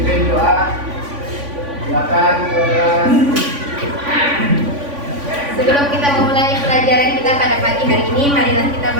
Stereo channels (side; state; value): left; late; 3.5 ms